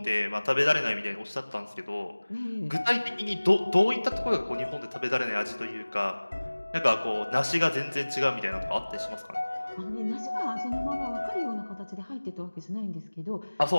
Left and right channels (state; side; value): inverted; both; correlation -1.00